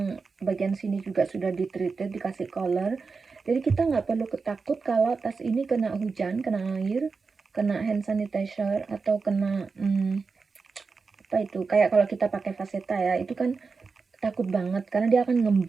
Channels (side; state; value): left; quieter; 4.7 dB